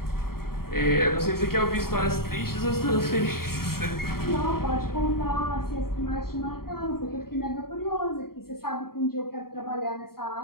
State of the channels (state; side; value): late; right; 0.93 ms